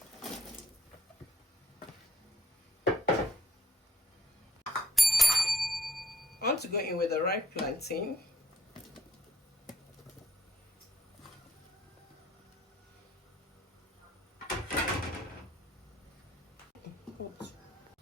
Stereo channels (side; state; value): both; normal; correlation 0.64